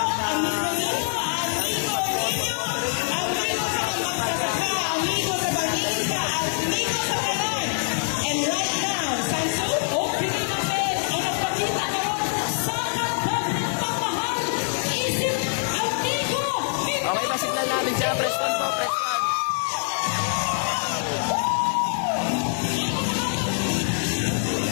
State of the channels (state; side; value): silent; right; digital silence